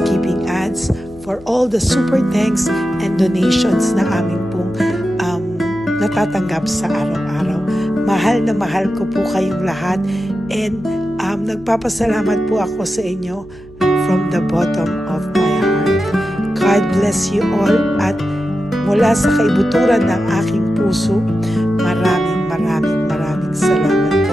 ads, for all the super thanks and donations na aming pong natatanggap sa araw-araw. Mahal na mahal ko po kayong lahat, and nagpapasalamat po ako sa inyo from the bottom of my heart. God bless you all, at mula sa kaibuturan ng aking puso, maraming salamat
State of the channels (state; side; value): noise; left; hum, 22 dB below the sound